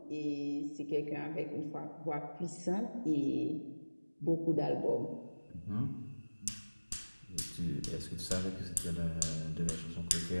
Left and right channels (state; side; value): inverted; both; correlation -1.00